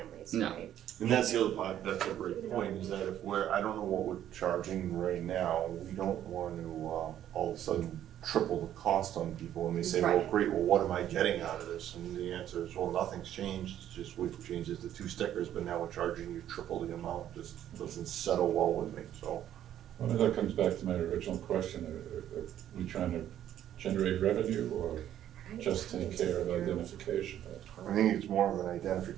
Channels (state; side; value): quieter; left; 11.2 dB